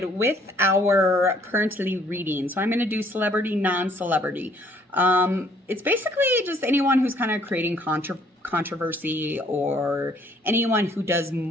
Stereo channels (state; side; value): normal; both; correlation 0.62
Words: with our currently reading. So I'm going to do celebrity, non-celebrity. It's basically just anyone who's kind of creating controversy or anyone who does